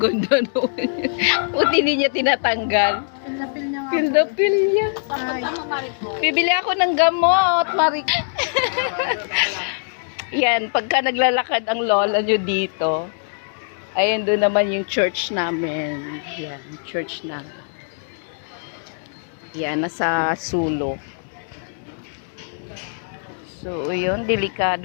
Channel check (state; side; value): silent; right; digital silence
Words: naman. Buti hindi niya tinatanggal. Pil niya nga. Pil niya. Bibili ako ng gamot, Marik. Yan, pagka naglalakad ang lola nyo dito, ayun doon naman yung church namin. Yan, church na. Yan, nasa sulok. So, yun,